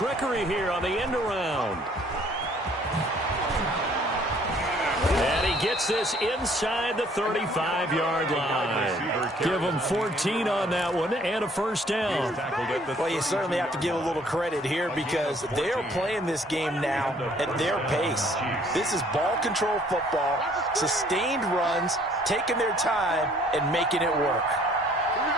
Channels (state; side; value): normal; both; correlation 0.60